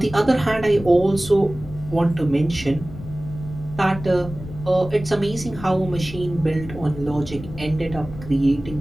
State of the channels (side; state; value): left; noise; rumble, 13 dB below the sound